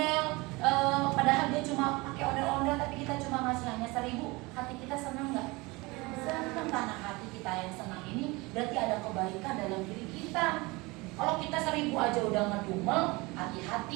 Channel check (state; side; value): quieter; left; 24.0 dB